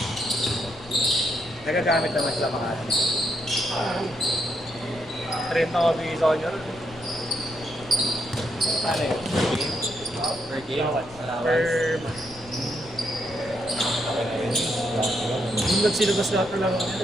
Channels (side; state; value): left; noise; rumble, 20 dB below the sound